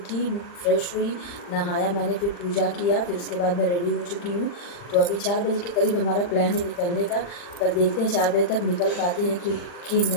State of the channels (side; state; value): right; late; 40 ms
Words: फ्रेश हुई, नहाया मैंने, फिर पूजा किया, फिर उसके बाद मैं रेडी हो चुकी हूँ। तो अभी 4 बजे के करीब हमारा प्लान है निकलने का, पर देखते हैं 4 बजे तक निकल पाते हैं कि